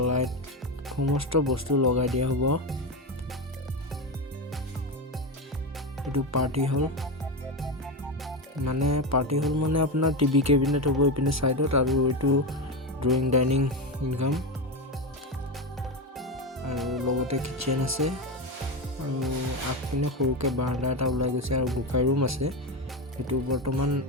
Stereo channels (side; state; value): both; normal; correlation 0.15